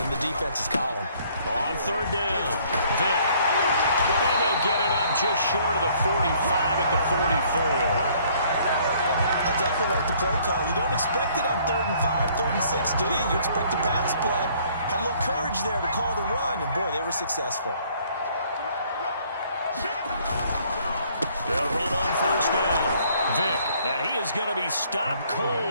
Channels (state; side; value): inverted; both; correlation -0.61